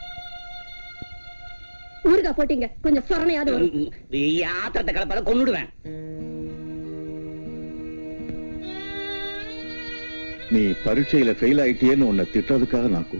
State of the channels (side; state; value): both; inverted; correlation -1.00